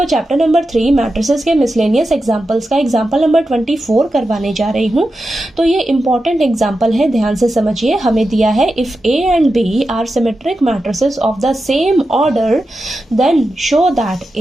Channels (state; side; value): normal; both; correlation 0.90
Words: चैप्टर नंबर 3 मैट्रिसेस के मिसलेनियस एग्जांपल्स का एग्जांपल नंबर 24 करवाने जा रही हूँ। तो ये इंपॉर्टेंट एग्जांपल है, ध्यान से समझिए। हमें दिया है if A and B are symmetric matrices of the same order then show that